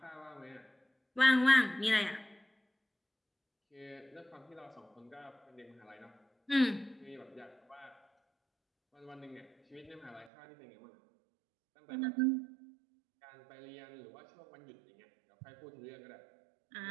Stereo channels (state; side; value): drops out; left; at 10.3 s